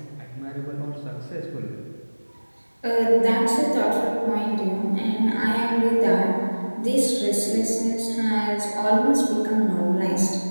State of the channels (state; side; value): inverted; both; correlation -1.00